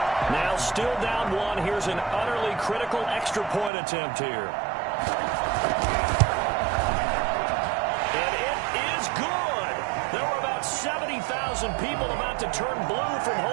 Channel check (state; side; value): drops out; left; at 3.7 s